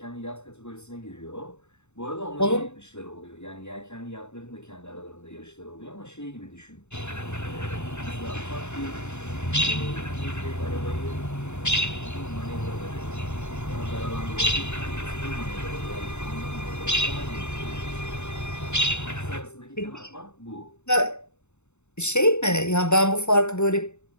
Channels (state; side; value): late; right; 0.82 ms